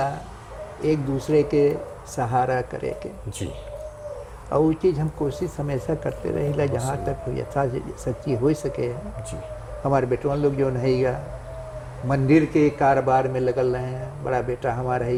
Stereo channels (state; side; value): identical; both; correlation 1.00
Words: एक दूसरे के सहारा करे के जी। और वो चीज़ हम कोशिश हमेशा करते रहेगा जहाँ तक हो यथा सच्ची हो सके। जी। हमारे बेटवा लोग जो रहेगा मंदिर के कारोबार में लगल रहे हैं। बड़ा बेटा हमारा